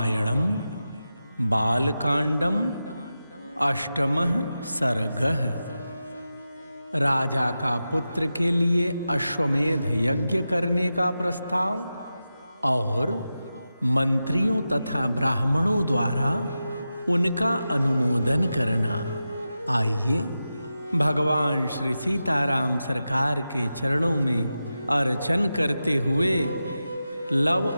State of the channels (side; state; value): both; inverted; correlation -0.92